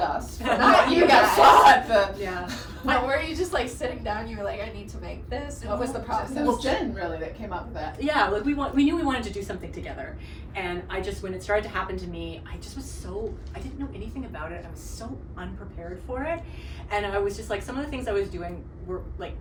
Not you guys. Yeah. But were you just like sitting down, you were like, I need to make this? What was the process? It was Jen really that came up with that. Yeah, like we knew we wanted to do something together. And when it started to happen to me, I didn't know anything about it. I was so unprepared for it. And I was just like, some of the things I was doing were like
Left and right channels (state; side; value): identical; both; correlation 1.00